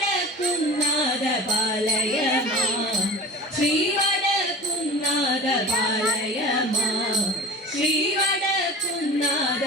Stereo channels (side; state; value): both; normal; correlation 0.37